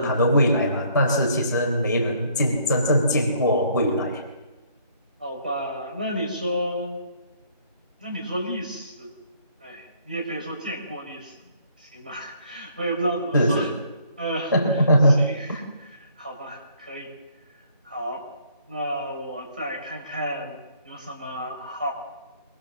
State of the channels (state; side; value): inverted; both; correlation -0.64